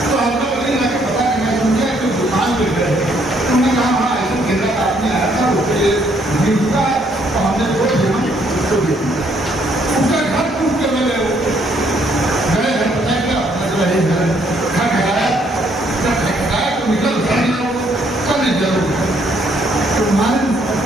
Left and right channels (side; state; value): both; normal; correlation 0.68